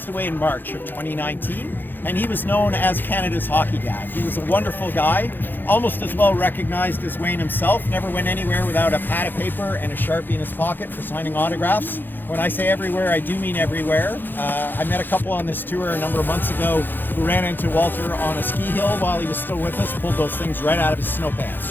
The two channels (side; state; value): right; late; 0.093 ms